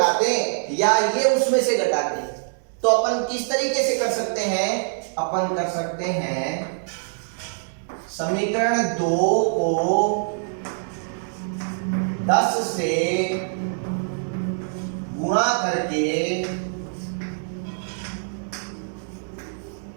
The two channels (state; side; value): silent; left; digital silence